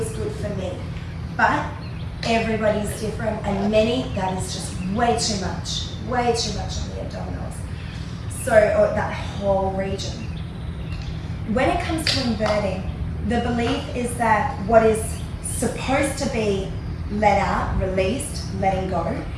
good for me. But everybody's different, and many, that is just way too much on the abdominals. So, or that whole region. When it comes to inverting, the belief is that what is supposed to be let out, released, letting go,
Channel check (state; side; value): identical; both; correlation 1.00